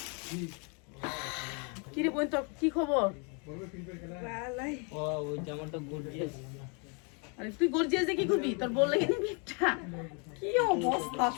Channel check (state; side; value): quieter; right; 35.4 dB